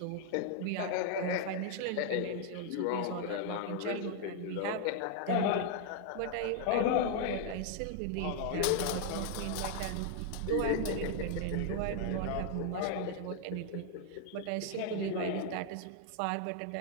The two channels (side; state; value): both; different; correlation 0.00